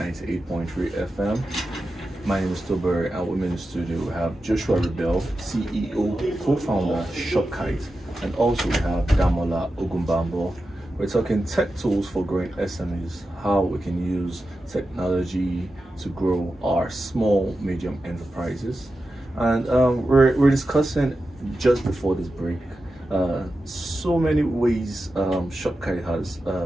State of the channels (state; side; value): normal; both; correlation 0.91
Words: FM. My name is Tobore, and with me in the studio we have Joshua Riebelle, CEO, co-founder, Shopkite, and also we have Damola, Ogunbambo. We're talking tech tools for growing SMEs, how we can use technology to grow our small, medium enterprises. And we're discussing just before this break so many ways Shopkite has